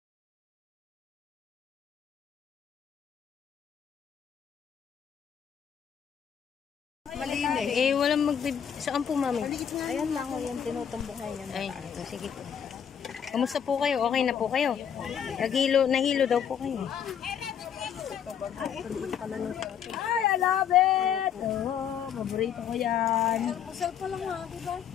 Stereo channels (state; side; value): quieter; right; 8.4 dB